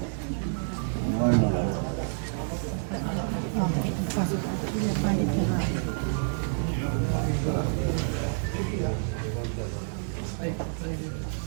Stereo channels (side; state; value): left; silent; digital silence